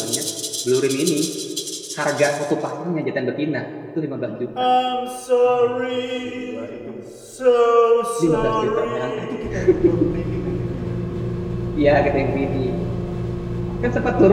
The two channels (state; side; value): identical; both; correlation 1.00